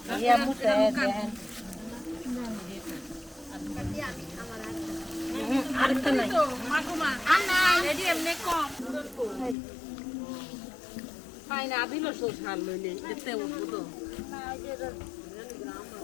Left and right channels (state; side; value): drops out; right; at 9.6 s